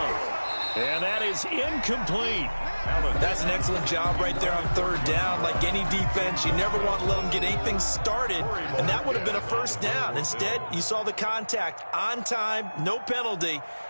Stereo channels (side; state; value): both; inverted; correlation -1.00